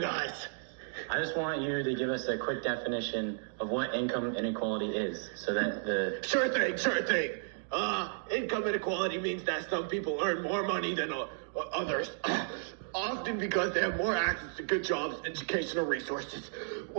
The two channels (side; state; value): left; silent; digital silence